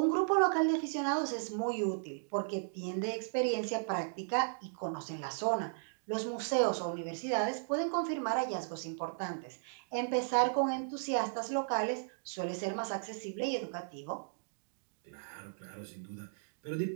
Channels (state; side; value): silent; left; digital silence